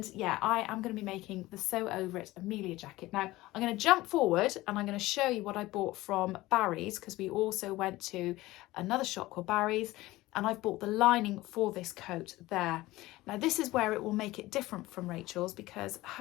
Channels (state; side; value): quieter; right; 18.3 dB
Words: yeah, I am going to be making the Sew Over It Amelia jacket. Now I'm going to jump forward and I'm going to show you what I bought from Barry's, because we also went to another shop called Barry's, and I've bought the lining for this coat there. Now this is where it will make it different from Rachel's, because